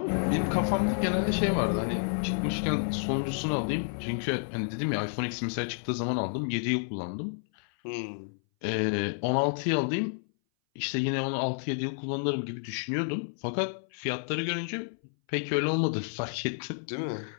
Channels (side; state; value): right; silent; 58 dB below the other